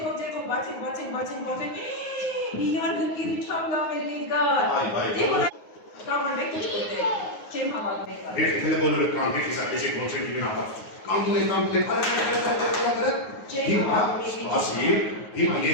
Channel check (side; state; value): right; late; 9.5 ms